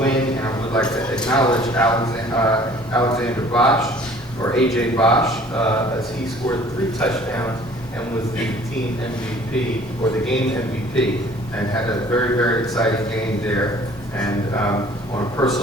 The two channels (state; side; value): normal; both; correlation 0.52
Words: And I would like to acknowledge Alexander Bosch, or AJ Bosch, as he scored 3 touchdowns and was the team MVP, or the game MVP, and had a very, very exciting game there. And on a